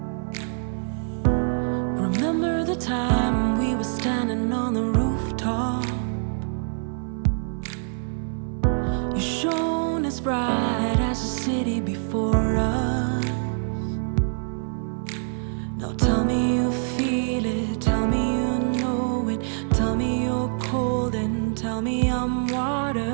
Time we were standing on the rooftop, you shone as bright as the city before us. Now tell me you feel it, tell me you know it, tell me you're cold and tell me I'm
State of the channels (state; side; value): silent; left; 62 dB below the other